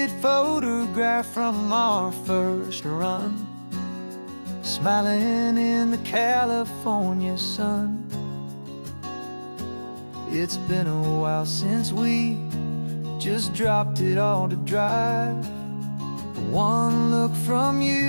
photograph from our first run, smiling in the California sun. It's been a while since we just dropped it all to drive. One look from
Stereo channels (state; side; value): inverted; both; correlation -1.00